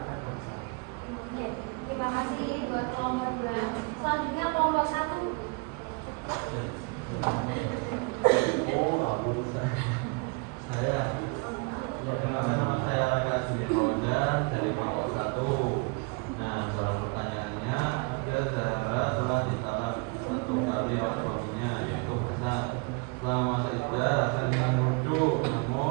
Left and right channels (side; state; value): left; quieter; 31.0 dB